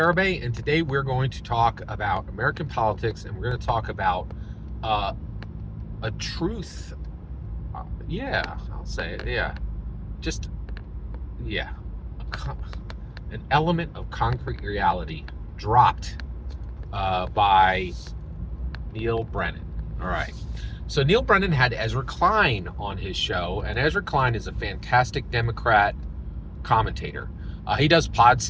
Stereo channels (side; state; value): both; identical; correlation 1.00